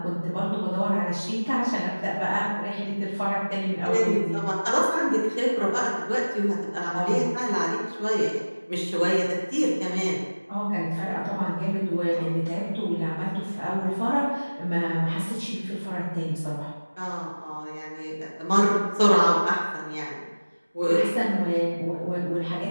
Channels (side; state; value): both; inverted; correlation -1.00